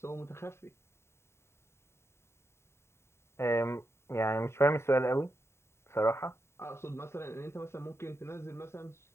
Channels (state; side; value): late; right; 0.13 ms